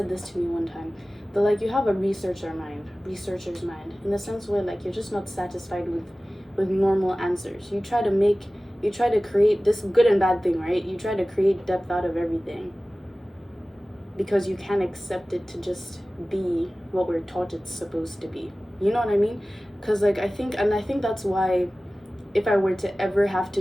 this to me one time. But like, you have a researcher's mind, in the sense where like you're just not satisfied with normal answers. You try to create this good and bad thing, right? You try to create depth out of everything because you can't accept it to just be what we're taught it's supposed to be. You know what I mean? Because like I think that's why if I were to ever have to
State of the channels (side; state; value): both; normal; correlation 0.97